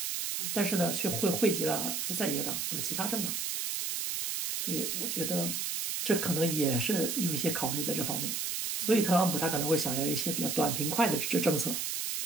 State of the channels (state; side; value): noise; right; hiss, 1 dB below the sound